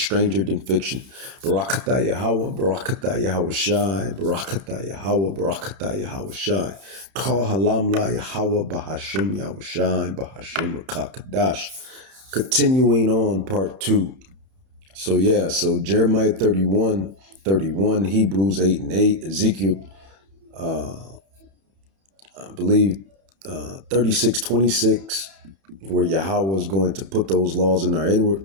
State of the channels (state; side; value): late; left; 31 ms